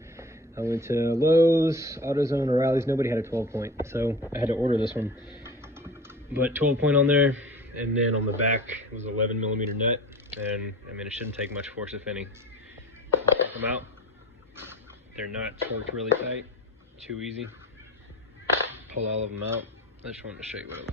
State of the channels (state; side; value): normal; both; correlation 0.36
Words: I went to Lowe's, AutoZone, O'Reilly's. Nobody had a 12 point, so I had to order this one. But 12 point on there, and then on the back it was 11 millimeter nut. And I mean, it shouldn't take much force, if any. Take them out. They're not torqued really tight. Too easy. Pull all of them out. I just wanted to show you what it